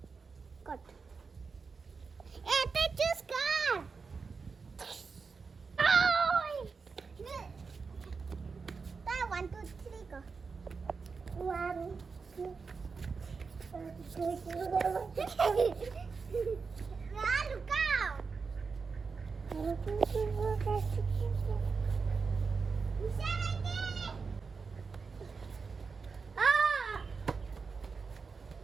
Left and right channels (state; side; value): quieter; left; 4.9 dB